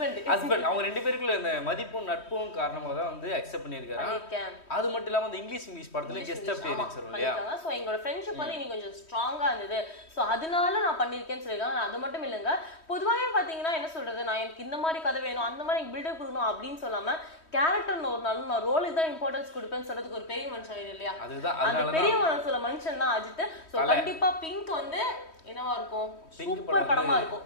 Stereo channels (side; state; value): right; late; 3.1 ms